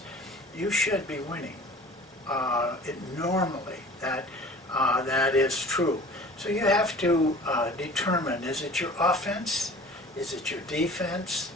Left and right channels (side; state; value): both; normal; correlation 0.43